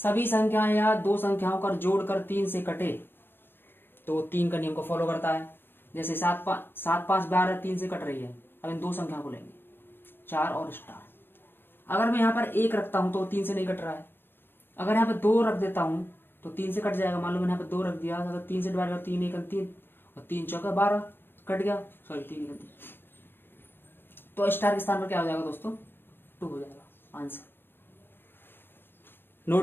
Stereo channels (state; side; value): late; right; 0.10 ms